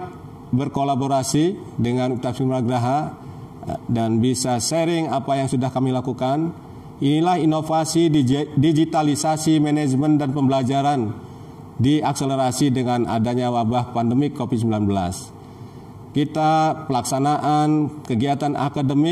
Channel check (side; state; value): both; identical; correlation 1.00